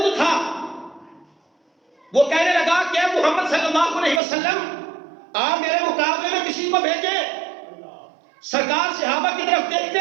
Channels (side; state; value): left; drops out; at 4.2 s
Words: تھا، وہ کہنے لگا کہ محمد صلی اللہ علیہ وسلم آپ میرے مقابلے میں کسی کو بھیجے۔ سرکار صحابہ کی طرف